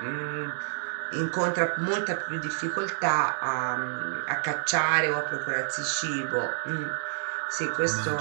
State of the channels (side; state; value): left; silent; digital silence